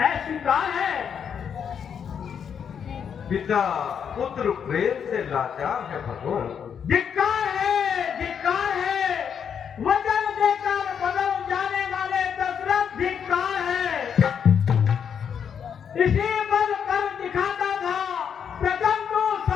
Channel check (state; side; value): quieter; right; 7.6 dB